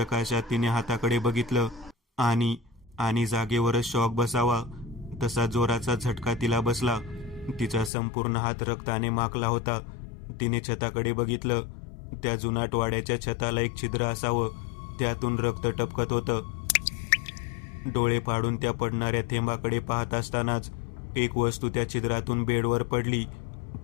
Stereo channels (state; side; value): drops out; right; at 7.9 s